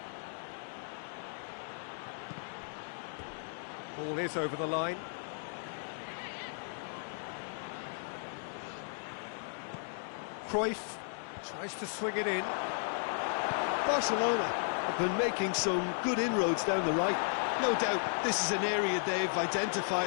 Ball is over the line. Cruyff tries to swing it in. Barcelona have been making some good inroads down the right. No doubt this is an area they've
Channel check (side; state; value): right; silent; digital silence